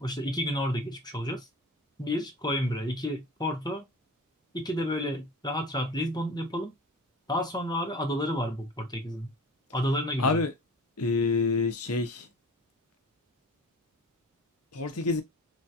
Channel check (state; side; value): normal; both; correlation 0.38